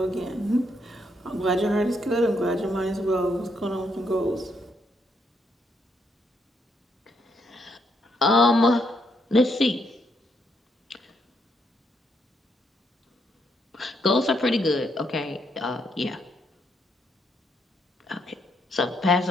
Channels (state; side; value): normal; both; correlation 0.75